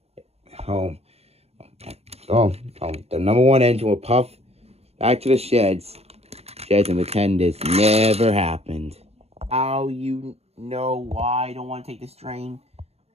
The number 1 engine will puff back to the sheds. Just pretend this never happened. How you know why I don't want to take this train?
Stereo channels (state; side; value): late; left; 0.30 ms